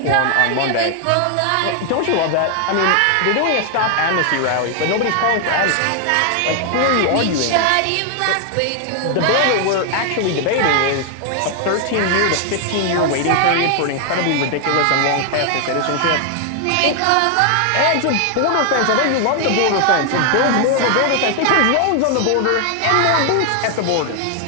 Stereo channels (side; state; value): both; different; correlation 0.00